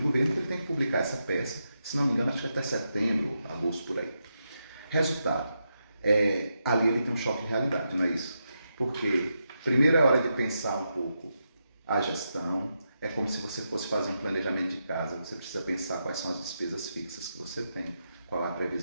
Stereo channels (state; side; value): inverted; both; correlation -0.85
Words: que ele tem que publicar essa peça. Se não me engano, acho que até setembro, agosto, por aí. Resultado, ali ele tem um choque de realidade, não é isso? Porque primeiro é hora de pensar um pouco a gestão, é como se você fosse fazer um planejamento de casa, você precisa pensar quais são as despesas fixas que você tem, qual é a